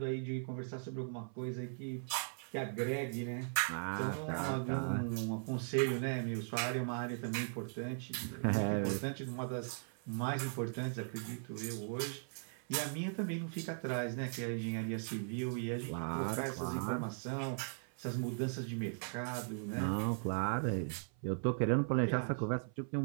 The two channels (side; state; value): left; silent; 52 dB below the other